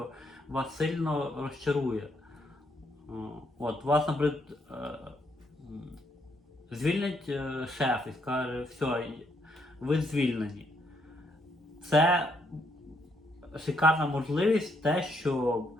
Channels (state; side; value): normal; both; correlation 0.73